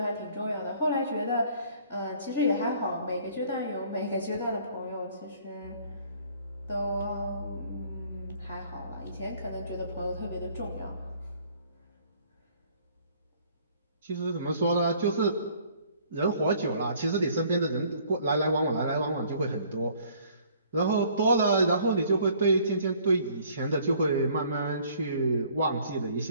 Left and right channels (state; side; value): inverted; both; correlation -0.58